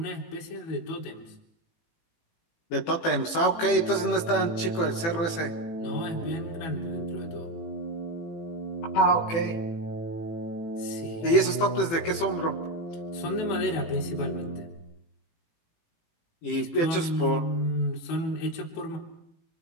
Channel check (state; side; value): late; right; 18 ms